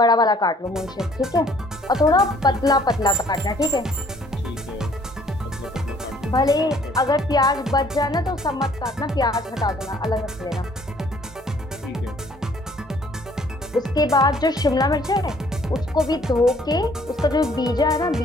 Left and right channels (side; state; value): both; normal; correlation 0.60